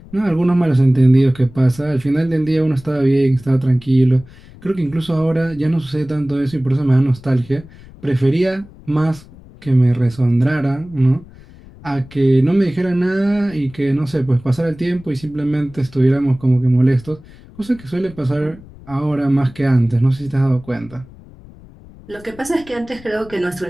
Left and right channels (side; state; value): left; noise; rumble, 21 dB below the sound